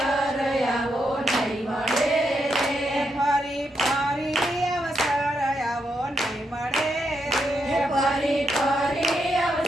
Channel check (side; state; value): both; normal; correlation 0.82